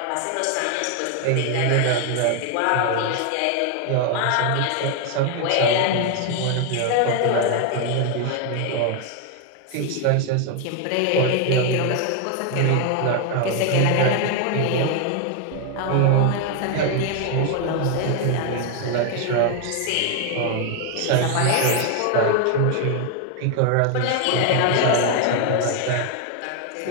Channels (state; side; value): different; both; correlation 0.00